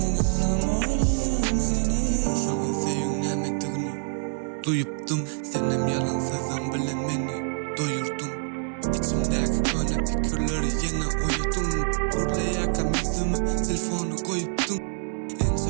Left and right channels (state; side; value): silent; left; digital silence